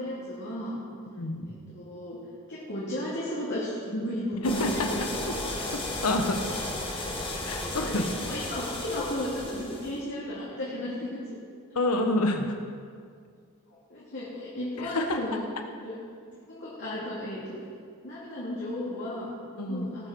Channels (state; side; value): normal; both; correlation 0.32